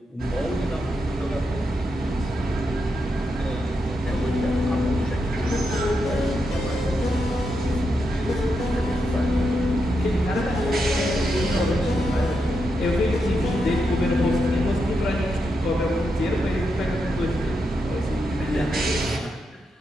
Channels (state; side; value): normal; both; correlation 0.84